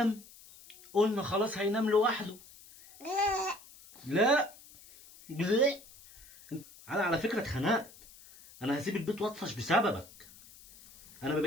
قلنا خلاص هينام لوحده. لا لا، انا على فكره اتخنقت. انا هسيب البيت واطفش بسببك. انا ما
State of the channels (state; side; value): noise; left; hiss, 22 dB below the sound